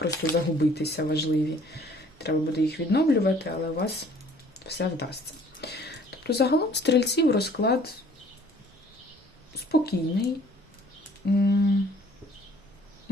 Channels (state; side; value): normal; both; correlation 0.56